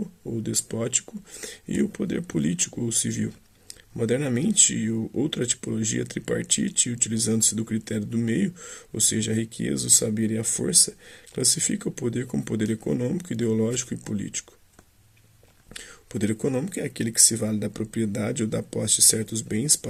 ou despótico e o poder político ou civil. Modernamente, outra tipologia tripartite, utilizando-se do critério do meio, ou seja, a riqueza, o saber e a força, classifica o poder como poder econômico, ideológico e político. O poder econômico é aquele que se vale da propriedade ou da posse de certos bens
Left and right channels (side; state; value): both; identical; correlation 1.00